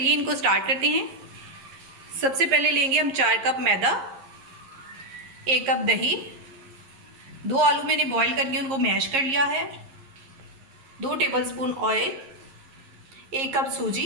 इनको स्टार्ट करते हैं। सबसे पहले लेंगे हम 4 कप मैदा, 1 कप दही, 2 आलू मैंने बॉईल करके उनको मैश कर लिया है, 2 टेबलस्पून ऑयल, 1 कप सूजी,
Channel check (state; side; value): late; left; 11 ms